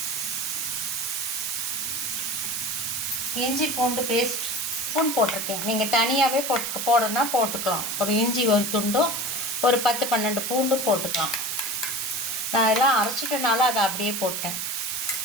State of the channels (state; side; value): noise; right; hiss, 2 dB below the sound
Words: இஞ்சி பூண்டு பேஸ்ட் ஸ்பூன் போட்டிருக்கேன். நீங்கள் தனியாகவே போடணும்னா போட்டுக்கலாம். ஒரு இஞ்சி ஒரு துண்டும் ஒரு 10-12 பூண்டும் போட்டுக்கலாம். நான் எல்லாம் அரைச்சிட்டனால அதை அப்படியே போட்டேன்.